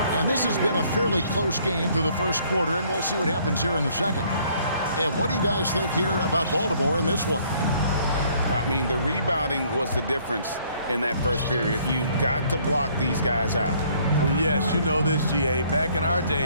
And this has been a fairly close game through the first quarter, and we'll see what happens here in the second. And what do you guys think here about Baltimore in this one? I mean, the rebounding was the difference in that first period. You've got to block these guys out. Yes, you know this, GA. Back in our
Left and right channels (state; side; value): inverted; both; correlation -0.62